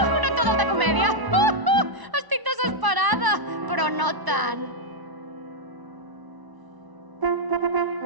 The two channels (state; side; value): late; left; 1.0 ms